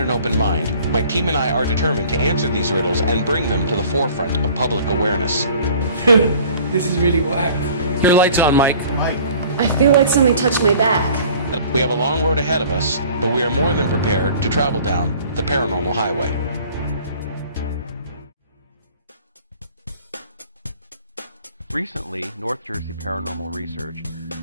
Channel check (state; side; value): inverted; both; correlation -0.50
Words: open mind, my team and I are determined to answer these riddles and bring them to the forefront of public awareness. This is really whack. Your lights on, Mike. I feel like something touched my back. We have a long road ahead of us, but we are more than prepared to travel down the paranormal highway. Recently, North Jersey Paranormal Research